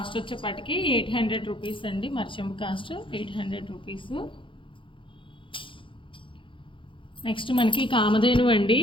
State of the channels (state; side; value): late; right; 0.25 ms